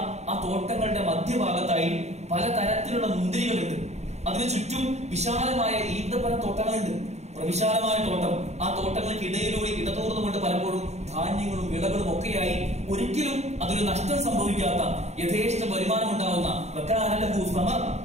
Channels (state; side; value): late; left; 0.32 ms